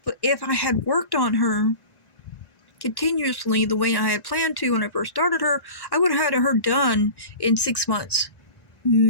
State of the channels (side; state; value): right; late; 1.9 ms